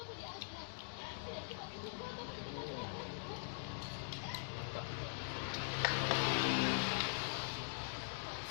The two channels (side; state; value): right; silent; digital silence